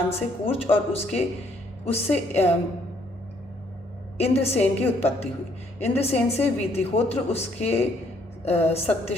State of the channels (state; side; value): normal; both; correlation 0.67